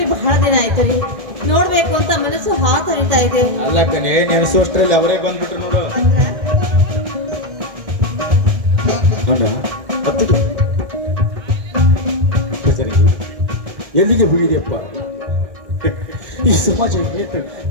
ಬಹಳ ದಿನ ಆಯ್ತು ರೀ. ನೋಡ್ಬೇಕು ಅಂತ ಮನಸ್ಸು ಹಾತರಿತಾ ಇದೆ. ಅಲ್ಲ ಕಣೆ, ನೆನೆಸೋಷ್ಟ್ರಲ್ಲಿ ಅವರೇ ಬಂದ್ಬಿಟ್ರು ನೋಡು. ಎಲ್ಲಿಗೆ ಹೋಗಿದೆಯಪ್ಪ? ಈ ಸಮಾಜ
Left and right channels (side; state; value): left; late; 1.6 ms